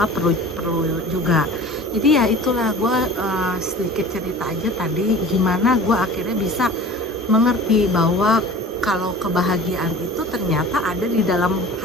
perlu juga. Jadi ya itulah, gue sedikit cerita aja tadi gimana gue akhirnya bisa mengerti bahwa kalau kebahagiaan itu ternyata ada di dalam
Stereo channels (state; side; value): normal; both; correlation 0.41